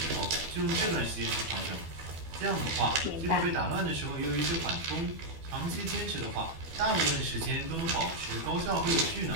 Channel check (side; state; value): left; late; 12 ms